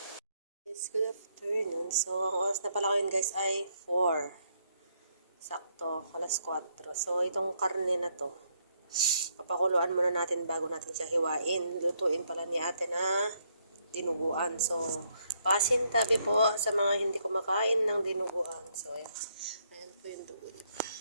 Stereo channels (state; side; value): inverted; both; correlation -0.73